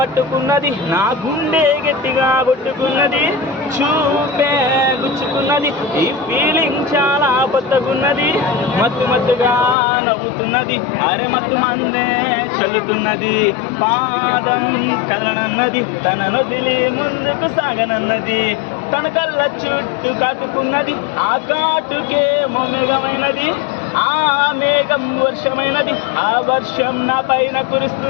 నా గుండె గట్టిగా కొట్టుకున్నది, చూపే గుచ్చుకున్నది, ఈ ఫీలింగ్ చాలా కొత్తగున్నది, మత్తు మత్తుగా నవ్వుతున్నది, అరే మత్తు మందే చల్లుతున్నది, పాదం కదలనన్నది, తనను దిలి ముందుకు సాగనన్నది, తన కళ్ళ చుట్టూ కాటుకున్నది, ఆ కాటుకే మేఘమైనది, ఆ మేఘం వర్షమైనది, ఆ వర్షం నా పైన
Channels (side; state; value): right; drops out; at 9.8 s